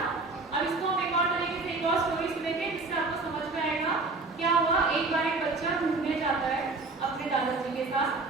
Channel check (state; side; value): quieter; left; 3.6 dB